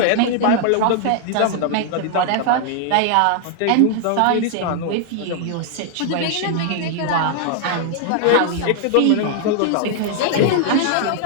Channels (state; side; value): different; both; correlation 0.00